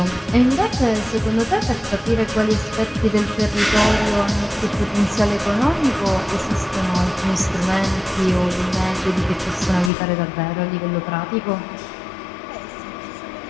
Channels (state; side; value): drops out; right; at 9.9 s